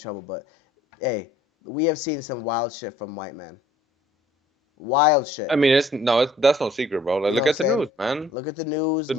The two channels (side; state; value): both; normal; correlation 0.57